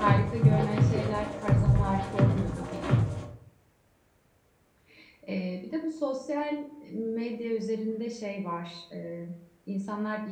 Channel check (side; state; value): both; identical; correlation 1.00